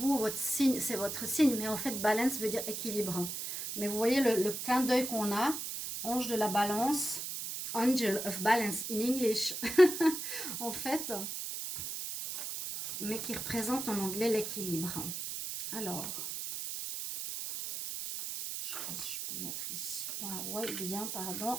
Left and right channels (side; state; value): right; noise; hiss, 5 dB below the sound